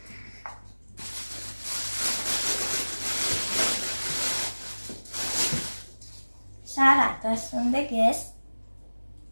Și arată, sunt de Guess.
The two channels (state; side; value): inverted; both; correlation -1.00